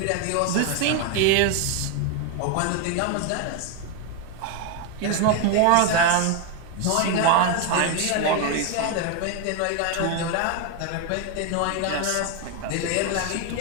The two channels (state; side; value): different; both; correlation 0.01